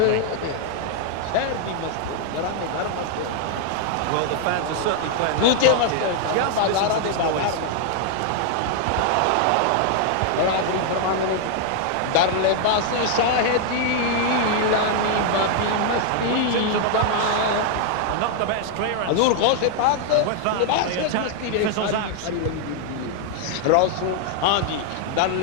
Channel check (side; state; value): both; different; correlation 0.00